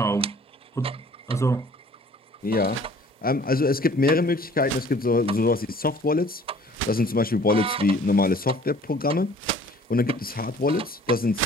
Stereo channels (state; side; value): normal; both; correlation 0.53